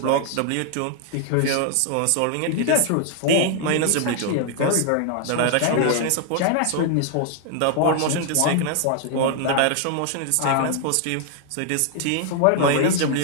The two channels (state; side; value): different; both; correlation 0.00